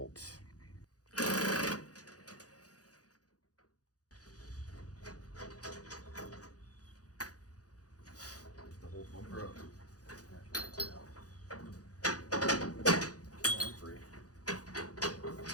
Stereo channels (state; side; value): late; right; 0.67 ms